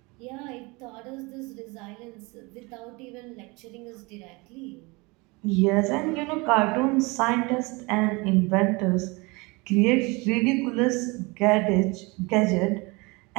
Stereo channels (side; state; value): left; quieter; 26.2 dB